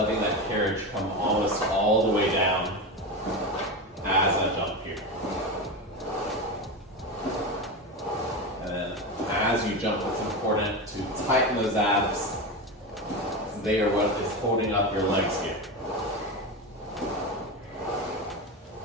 that carriage come almost all the way down as I jump here. And then as you jump, it's important to tighten those abs. They are what is holding up your legs here.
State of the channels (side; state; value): both; normal; correlation 0.19